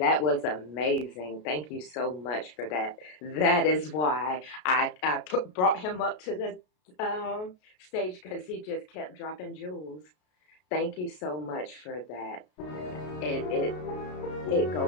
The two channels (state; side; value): late; right; 33 ms